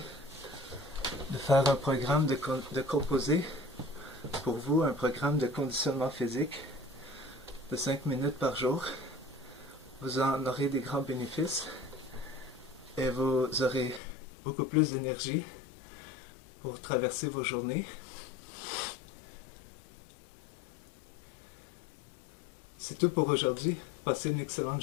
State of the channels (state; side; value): drops out; right; at 14.0 s